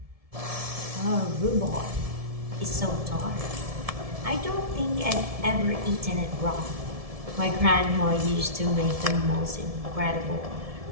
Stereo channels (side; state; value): left; late; 1.7 ms